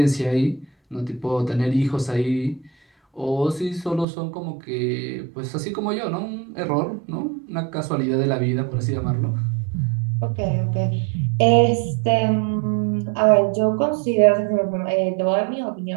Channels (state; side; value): drops out; left; at 4.0 s